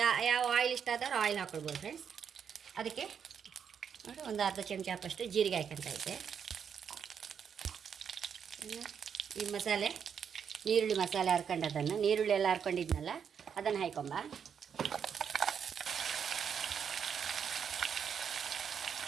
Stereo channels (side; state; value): left; quieter; 7.4 dB